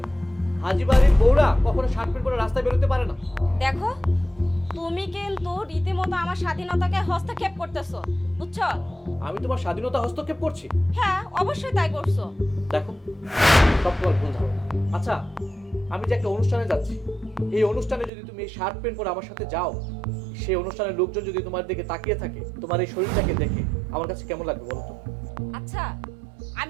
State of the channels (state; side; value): drops out; left; at 18.1 s